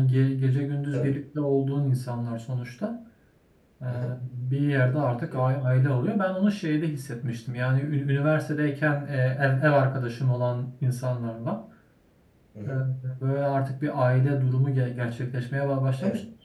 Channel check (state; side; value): identical; both; correlation 1.00